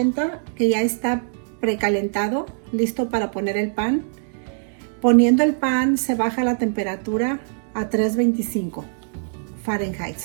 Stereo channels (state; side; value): silent; left; digital silence